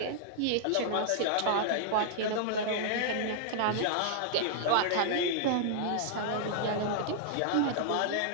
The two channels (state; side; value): different; both; correlation -0.01